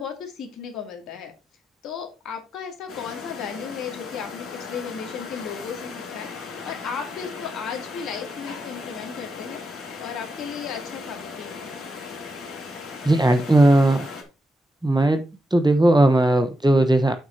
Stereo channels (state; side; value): normal; both; correlation 0.86